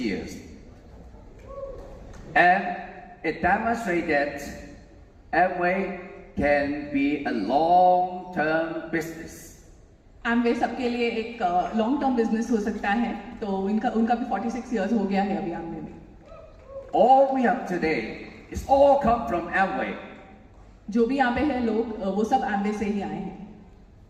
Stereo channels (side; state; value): both; identical; correlation 1.00